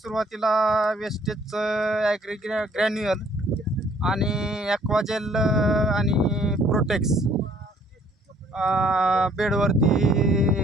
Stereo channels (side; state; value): both; normal; correlation 0.61